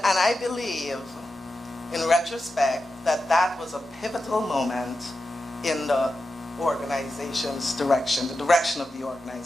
I believe, in retrospect, that was a pivotal moment in the organization's direction, the direction of the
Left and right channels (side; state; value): both; normal; correlation 0.90